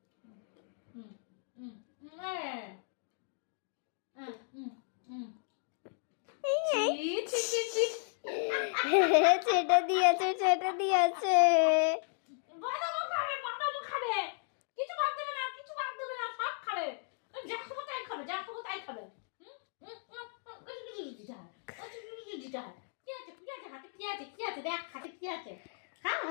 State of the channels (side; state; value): right; silent; digital silence